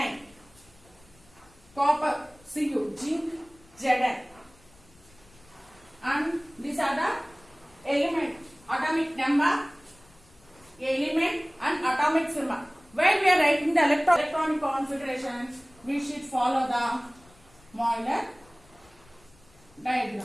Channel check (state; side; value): noise; left; rumble, 28 dB below the sound